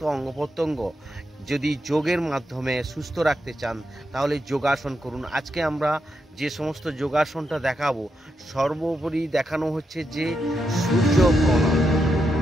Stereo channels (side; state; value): both; normal; correlation 0.84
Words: অঙ্গ প্রত্যঙ্গ যদি যোগের মাধ্যমে সুস্থ রাখতে চান তাহলে যোগাসন করুন। আজকে আমরা যে সমস্ত যোগাসনটা দেখাবো, সর্বোপরি দেখানো হচ্ছে যে সূর্য প্রণাম।